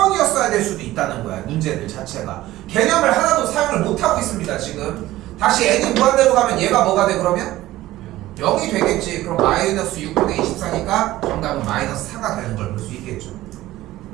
될 수도 있다는 거야 문제들 자체가. 개념을 하나도 사용을 못하고 있습니다 지금. 다시 n이 무한대로 가면 얘가 뭐가 돼 그러면? 0이 되겠지. 그럼 마이너스 6분의 24니까 정답은 마이너스 4가 되는 걸 볼 수 있겠죠.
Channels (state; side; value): quieter; left; 16.1 dB